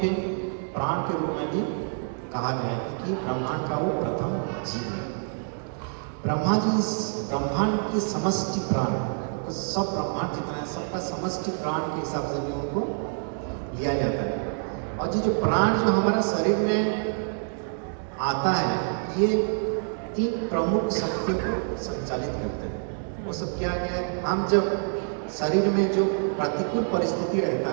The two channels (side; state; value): left; silent; 55 dB below the other